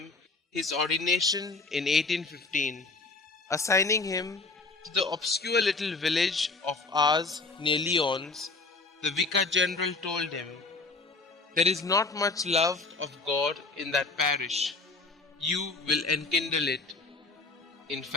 his ordination in 1815. Assigning him to the obscure little village of Ars near Lyons, the Vicar General told him, "There is not much love of God in that parish. You will enkindle it." In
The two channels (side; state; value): right; quieter; 3.7 dB